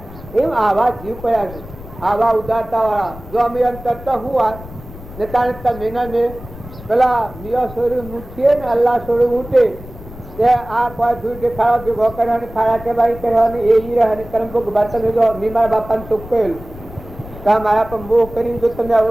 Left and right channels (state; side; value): noise; left; rumble, 15 dB below the sound